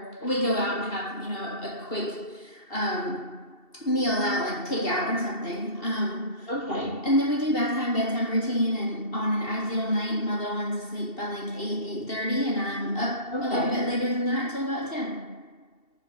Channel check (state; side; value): late; right; 2.7 ms